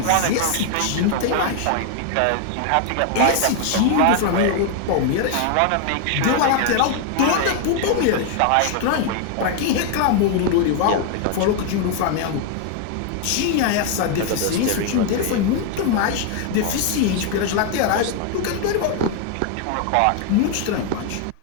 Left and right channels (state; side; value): different; both; correlation 0.00